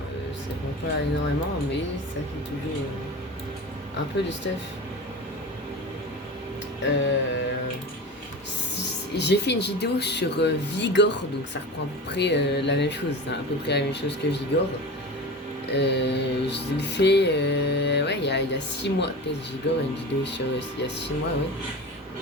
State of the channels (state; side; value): normal; both; correlation 0.31